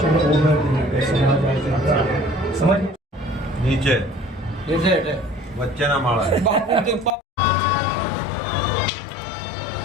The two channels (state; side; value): drops out; right; at 7.1 s